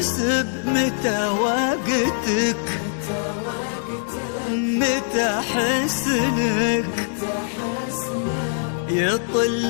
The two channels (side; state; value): right; silent; digital silence